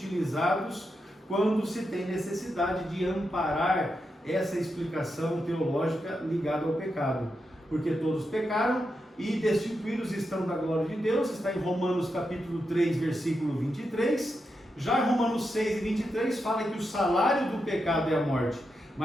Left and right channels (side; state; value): both; normal; correlation 0.86